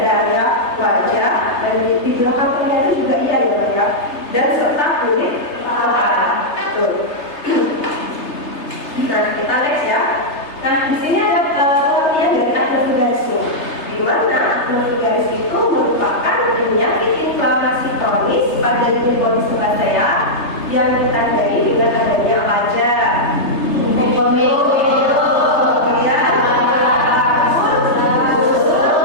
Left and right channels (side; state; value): right; late; 3.3 ms